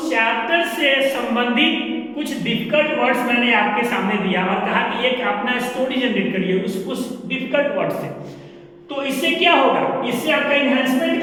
चैप्टर से संबंधित कुछ डिफिकल्ट वर्ड्स मैंने आपके सामने दिया और कहा कि एक अपना स्टोरी जनरेट करिए उस डिफिकल्ट वर्ड से। तो इससे क्या होगा, इससे आपका इन्हांसमेंट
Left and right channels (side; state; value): both; identical; correlation 1.00